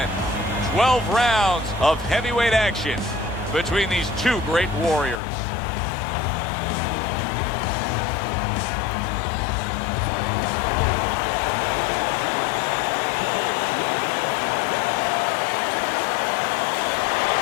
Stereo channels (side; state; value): right; drops out; at 5.2 s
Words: 12 rounds of heavyweight action between these two great warriors.